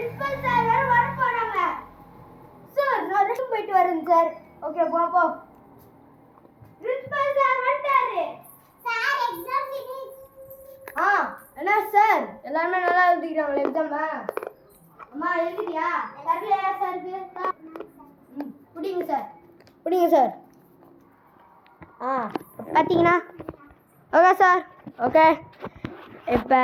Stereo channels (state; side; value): identical; both; correlation 1.00